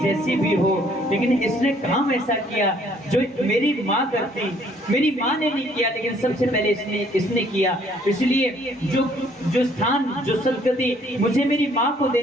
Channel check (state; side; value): normal; both; correlation 0.62